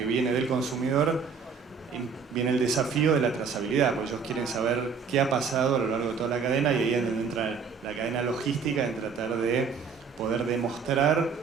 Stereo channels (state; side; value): quieter; left; 5.7 dB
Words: viene del consumidor, viene el desafío de la trazabilidad, porque ellos quieren saber qué ha pasado a lo largo de toda la cadena, y ahí es donde entra la cadena logística, en tratar de poder